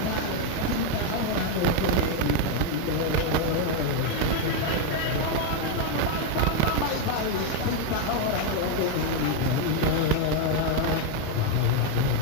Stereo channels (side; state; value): both; different; correlation 0.01